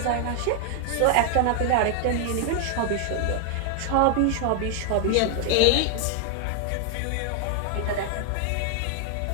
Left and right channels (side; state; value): both; different; correlation 0.00